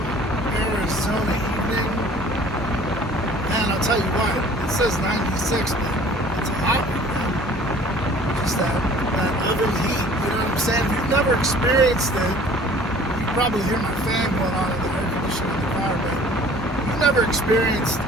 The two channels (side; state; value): both; normal; correlation 0.50